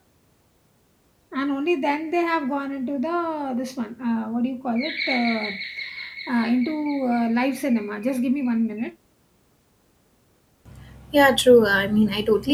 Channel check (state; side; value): identical; both; correlation 1.00